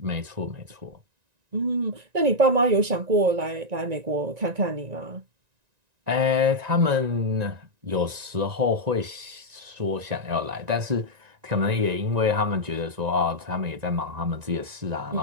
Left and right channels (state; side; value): late; left; 1.9 ms